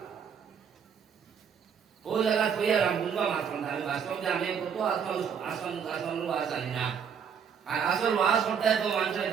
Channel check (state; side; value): quieter; left; 7.4 dB